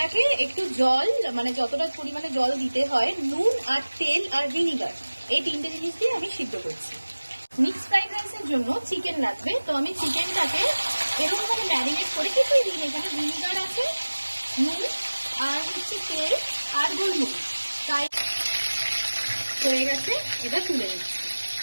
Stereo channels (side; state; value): both; inverted; correlation -1.00